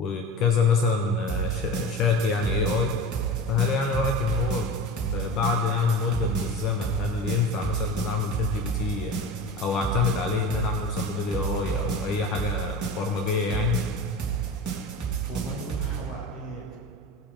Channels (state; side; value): normal; both; correlation 0.31